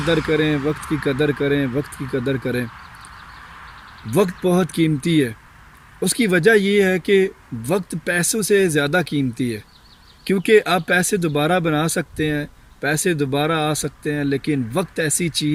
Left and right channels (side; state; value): both; identical; correlation 1.00